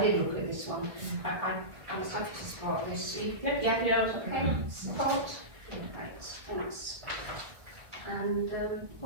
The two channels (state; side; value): late; left; 1.9 ms